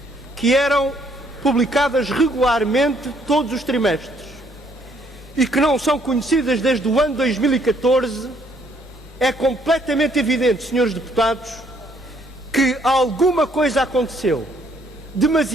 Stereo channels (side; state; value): both; normal; correlation 0.67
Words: que eram publicadas regularmente todos os trimestres e que não são conhecidas desde o ano 2014, é completamente evidente, senhores deputados, que alguma coisa aconteceu